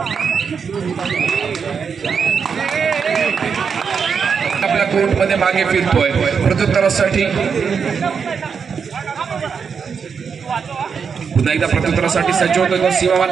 आपल्या कोर्टमध्ये मागे फिरतोय प्रत्युत्तरासाठी पुन्हा एकदा प्रत्युत्तरासाठी सज्ज होतोय तो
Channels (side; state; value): left; quieter; 6.2 dB